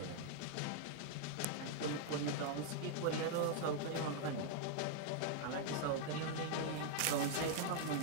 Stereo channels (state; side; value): different; both; correlation 0.00